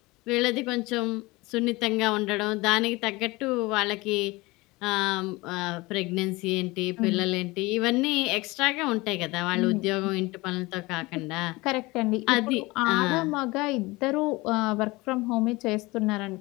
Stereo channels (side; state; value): right; quieter; 22.4 dB